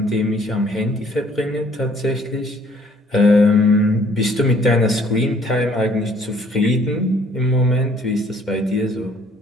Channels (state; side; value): normal; both; correlation 0.60